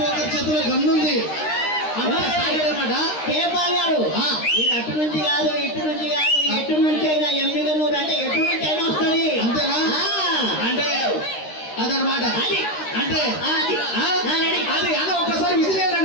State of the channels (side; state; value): right; late; 13 ms